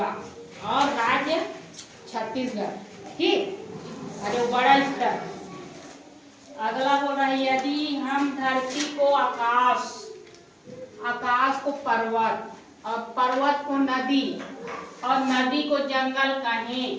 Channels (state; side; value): identical; both; correlation 1.00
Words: और राज्य छत्तीसगढ़। ठीक, अरे बड़ा स्तर। अगला बोल रहा है, यदि हम धरती को आकाश, आकाश को पर्वत, और पर्वत को नदी, और नदी को जंगल